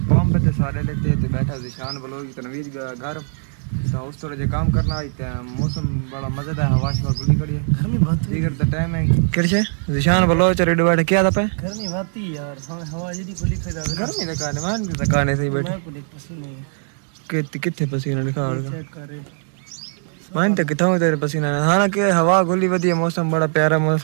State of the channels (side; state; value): left; silent; digital silence